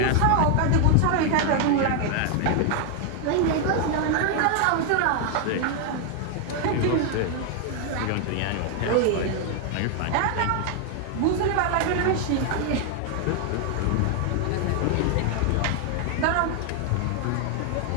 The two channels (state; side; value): different; both; correlation 0.00